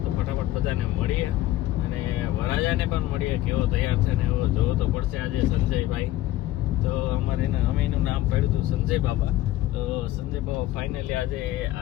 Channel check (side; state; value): right; quieter; 15.1 dB